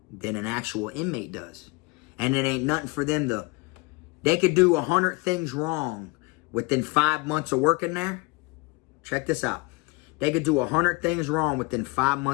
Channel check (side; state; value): right; quieter; 26.4 dB